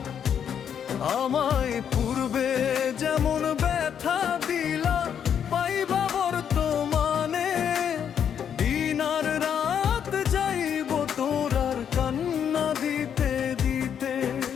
আমায় পূর্বে যেমন ব্যথা দিলা পাইবা বর্তমানে, দিন আর রাত যাইব তোর আর কান্না দিতে দিতে।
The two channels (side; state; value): right; quieter; 8.4 dB